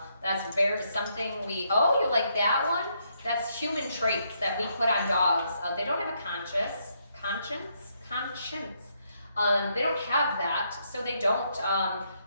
That's something oh, you like that one? That's human traits that we put on dogs. They don't have a conscience. They don't have that, so they don't,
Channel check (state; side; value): inverted; both; correlation -0.75